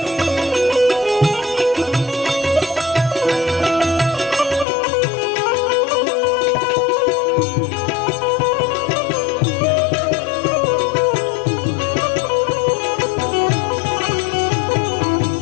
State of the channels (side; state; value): right; drops out; at 4.7 s